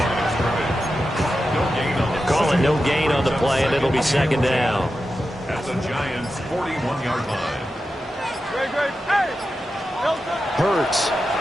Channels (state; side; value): normal; both; correlation 0.91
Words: Call it no gain on the play, and it'll be second down. At the Giants' 41-yard line. Hurts.